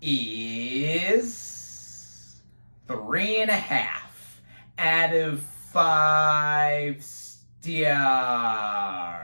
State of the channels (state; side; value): inverted; both; correlation -1.00